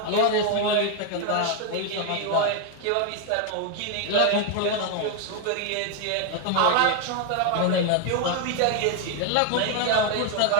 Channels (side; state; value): both; different; correlation 0.01